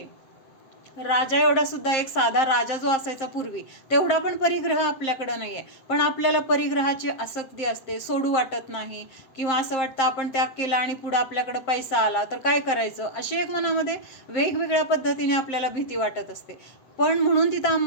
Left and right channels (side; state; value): right; late; 7.6 ms